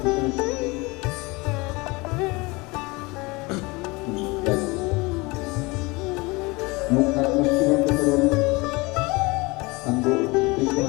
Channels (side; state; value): right; quieter; 24.9 dB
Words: পিছনে সরিয়ে মুখ হাত মুষ্টি বন্ধ করুন, আঙ্গুল তিনটে